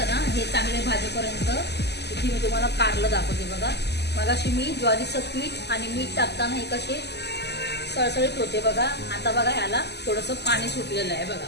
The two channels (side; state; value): right; late; 0.49 ms